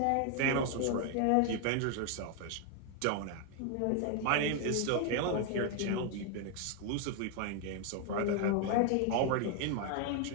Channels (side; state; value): both; different; correlation 0.01